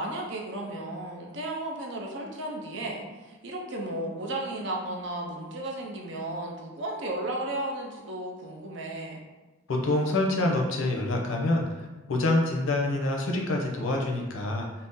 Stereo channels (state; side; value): normal; both; correlation 0.42